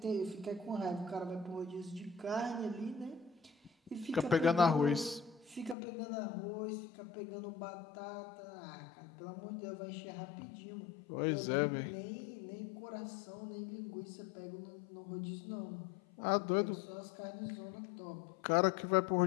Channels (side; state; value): right; drops out; at 5.8 s